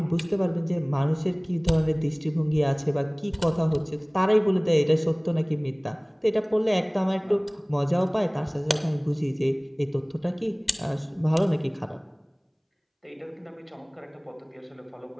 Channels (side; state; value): both; identical; correlation 1.00